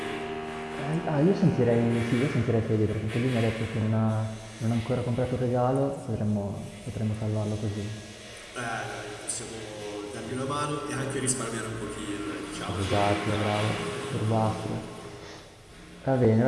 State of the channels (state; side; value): identical; both; correlation 1.00